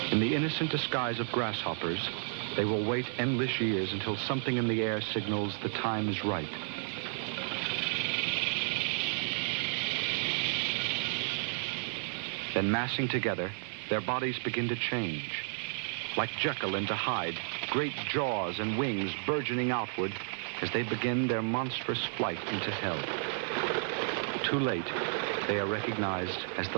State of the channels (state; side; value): silent; left; digital silence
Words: In the innocent disguise of grasshoppers, they will wait endless years until something in the air signals the time is right. Then massing together, their bodies begin to change. Like Jekyll into Hyde, great jaws and wings burgeoning outward as they begin their monstrous flight into hell. Too late, they are recognized as